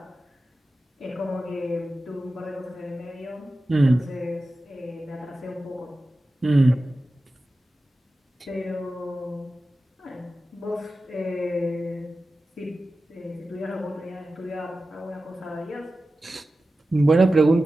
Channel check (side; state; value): both; normal; correlation 0.94